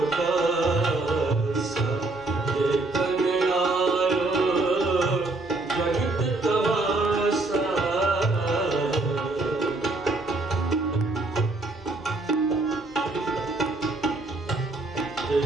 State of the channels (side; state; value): left; quieter; 3.1 dB